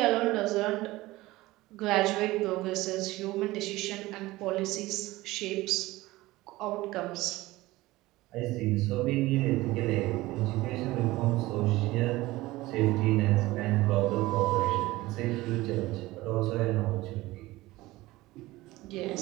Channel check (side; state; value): left; quieter; 18.8 dB